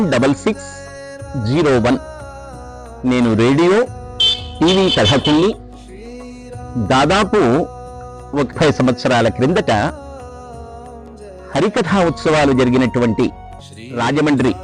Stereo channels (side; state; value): both; identical; correlation 1.00